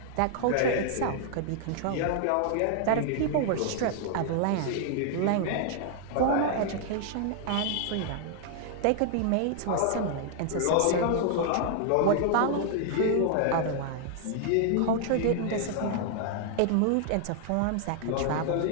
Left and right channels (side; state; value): both; different; correlation 0.00